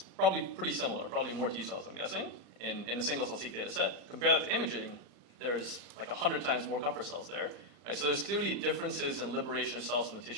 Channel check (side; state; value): left; late; 35 ms